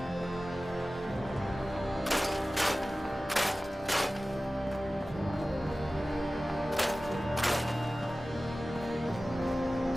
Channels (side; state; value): both; normal; correlation 0.96